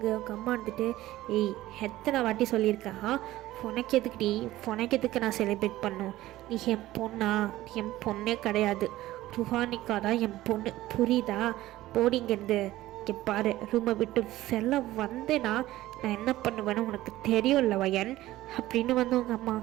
உங்கள் அம்மா வந்துட்டு, ஏய் எத்தனை வாட்டி சொல்லியிருக்கா, உனக்கு எதுக்கு நான் செலிப்ரேட் பண்ணும்? நீ என் பொண்ணா? என் பொண்ணே கிடையாது, ருஹானிகா தான் என் பொண்ணு, புரியுதா? போடிங்கிறது. இங்கே பாரு, ரூமை விட்டு வெளில வந்தேன்னா நான் என்ன பண்ணுவேன்னு உனக்கு தெரியும்ல வயன் அப்படின்னு வந்து உங்கள் அம்மா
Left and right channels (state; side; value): quieter; left; 15.9 dB